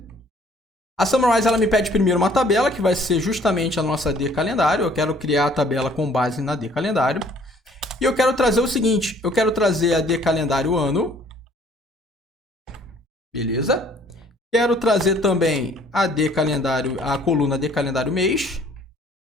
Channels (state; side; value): normal; both; correlation 0.58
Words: A summarize ela me pede primeiro uma tabela, que vai ser justamente a nossa de calendário. Eu quero criar a tabela com base na de calendário. E eu quero trazer o seguinte, eu quero trazer a de calendário ano. Beleza? Quero trazer também a coluna de calendário mês.